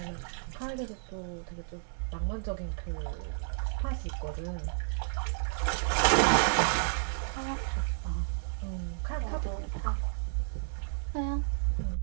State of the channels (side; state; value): left; silent; 56 dB below the other